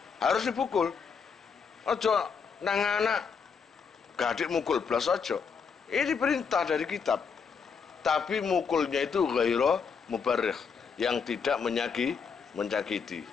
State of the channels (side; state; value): right; quieter; 6.0 dB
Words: Harus dipukul. Ojo nang anak gadik mukul blas ojo. Ini perintah dari kitab. Tapi mukulnya itu ghaira mubarrih, yang tidak menyakiti.